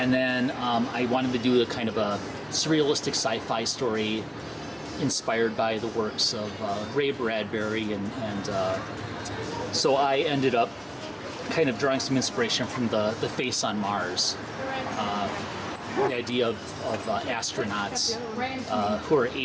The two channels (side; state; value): both; identical; correlation 1.00